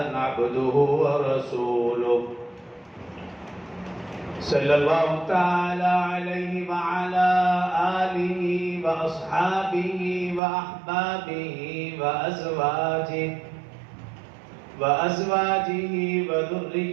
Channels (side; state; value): left; drops out; at 10.4 s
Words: عبده ورسوله صلى الله تعالى عليه وعلى آله وأصحابه وأحبابه وأزواجه